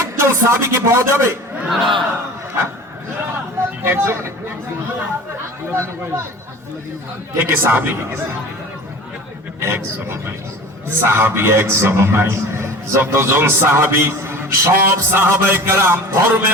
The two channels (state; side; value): normal; both; correlation 0.39